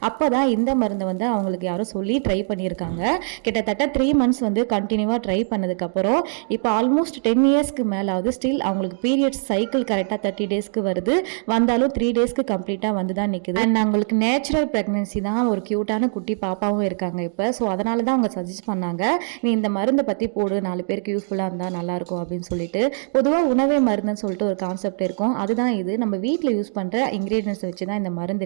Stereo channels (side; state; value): left; silent; digital silence